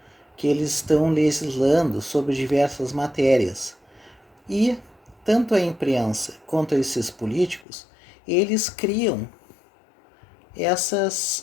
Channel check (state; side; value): drops out; right; at 7.7 s